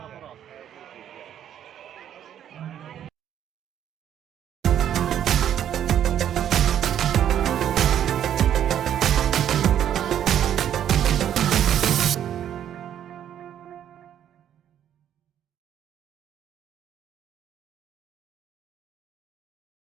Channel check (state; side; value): quieter; left; 10.1 dB